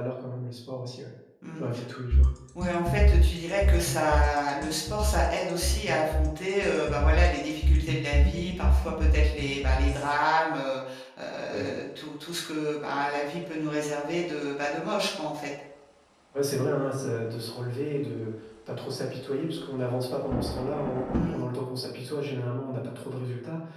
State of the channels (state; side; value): identical; both; correlation 1.00